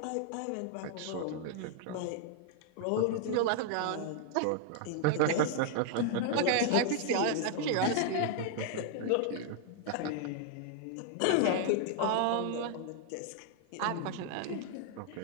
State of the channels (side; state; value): both; different; correlation 0.00